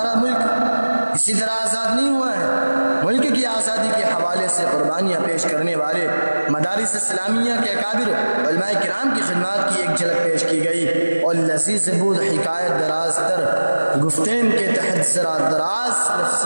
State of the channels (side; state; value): both; inverted; correlation -1.00